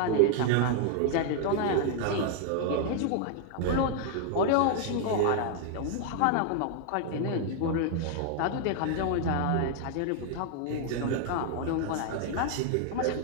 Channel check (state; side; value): different; both; correlation 0.00